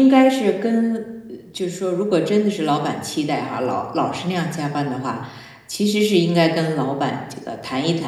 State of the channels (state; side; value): identical; both; correlation 1.00